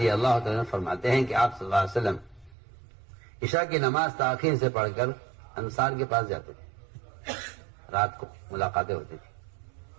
اللہ تعالیٰ فرماتے ہیں کہ آپ صلی اللہ علیہ وسلم عشاء کی نماز تاخیر سے پڑھ کر انصار کے پاس جاتے تھے. رات کو ملاقاتیں ہوتی تھی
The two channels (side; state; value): left; drops out; at 2.6 s